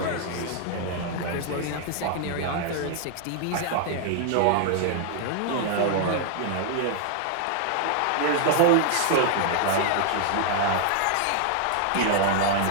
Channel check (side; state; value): both; different; correlation 0.00